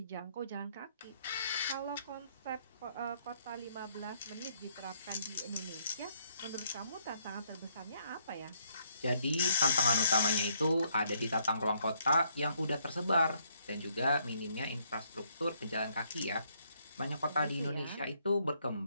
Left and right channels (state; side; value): inverted; both; correlation -0.71